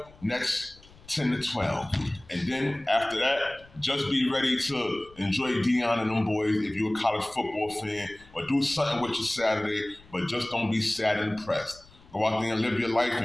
next 10 to 12. And then after that, just be ready to enjoy Deion and them boys if you're a college football fan, or do something with your Saturday, but just don't be sad and depressed. Go out there and live your life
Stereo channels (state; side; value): noise; left; rumble, 25 dB below the sound